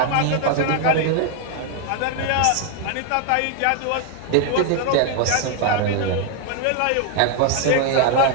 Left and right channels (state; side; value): different; both; correlation 0.00